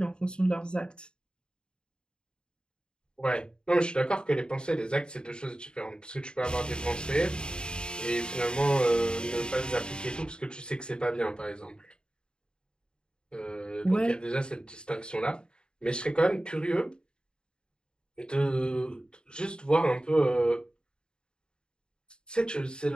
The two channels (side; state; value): right; late; 0.049 ms